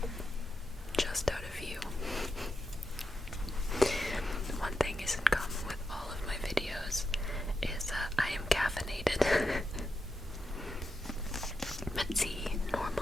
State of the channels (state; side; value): normal; both; correlation 0.87